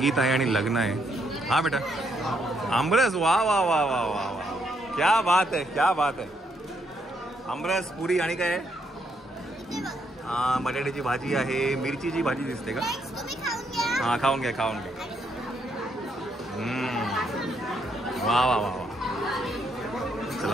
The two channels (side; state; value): both; normal; correlation 0.75